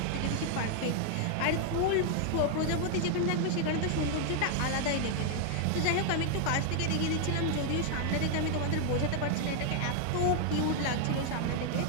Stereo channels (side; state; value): both; different; correlation 0.00